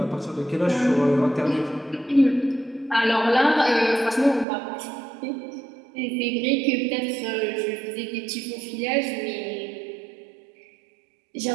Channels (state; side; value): drops out; left; at 4.5 s